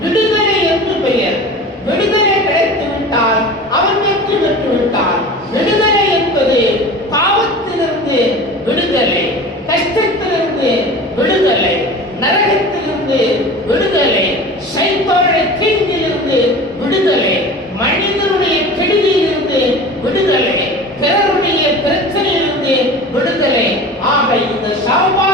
விடுதலை என்று பெயர். விடுதலை கிடைத்து விட்டால் அவன் வெற்றி பெற்று விட்டான். விடுதலை என்பது பாவத்திலிருந்து விடுதலை, கஷ்டத்திலிருந்து விடுதலை, நரகத்திலிருந்து விடுதலை, சைத்தானுடைய தீங்கிலிருந்து விடுதலை, மனிதனுடைய கெடுதியிலிருந்து விடுதலை, பிறருடைய பிரச்சனையிலிருந்து விடுதலை. ஆக இந்த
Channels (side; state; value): both; normal; correlation 0.36